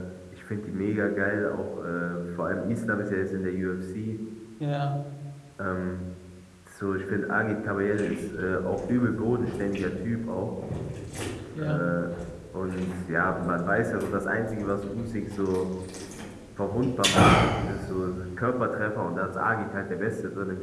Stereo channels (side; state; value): both; identical; correlation 1.00